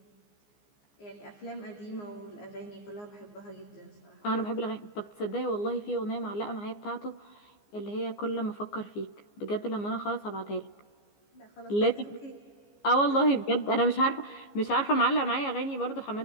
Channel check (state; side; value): late; right; 14 ms